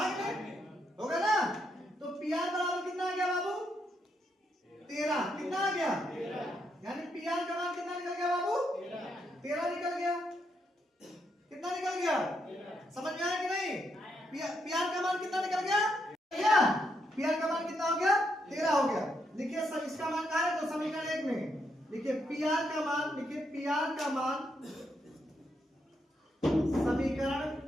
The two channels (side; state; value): both; normal; correlation 0.79